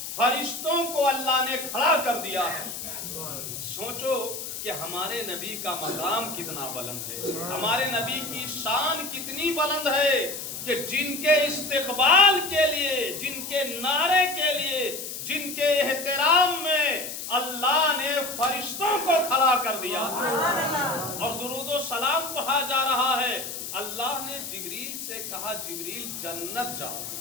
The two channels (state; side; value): noise; left; hiss, 7 dB below the sound